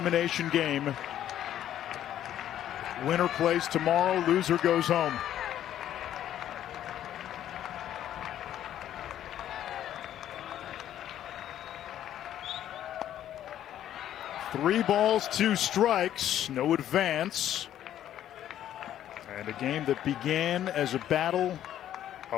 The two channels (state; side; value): quieter; right; 11.4 dB